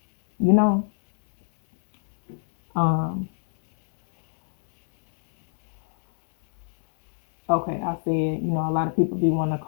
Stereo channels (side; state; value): right; silent; digital silence